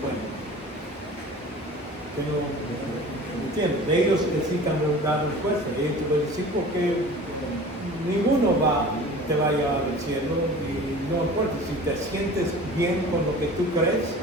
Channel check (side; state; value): both; normal; correlation 0.41